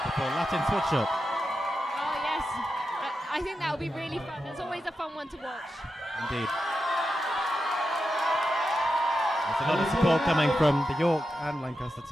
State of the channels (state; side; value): normal; both; correlation 0.89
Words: before Latin switch up. Oh yes, I think that will be really fun. It's always a fun one to watch. Indeed. There's a lot of support coming from the York and Lancaster